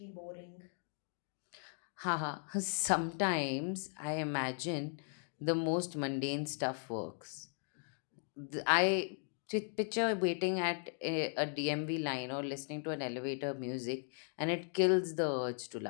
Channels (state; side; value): silent; right; 53 dB below the other